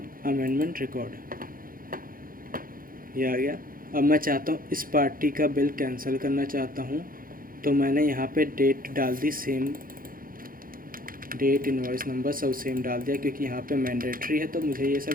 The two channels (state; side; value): late; left; 0.41 ms